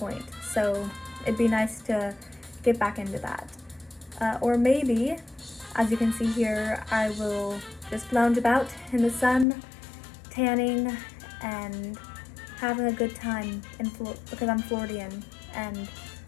so it'd be nice to get back into that. Or maybe, as you can see here, I will just lounge about in the sun, tanning, and having a good time because I'm Floridian and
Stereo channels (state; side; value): drops out; right; at 9.5 s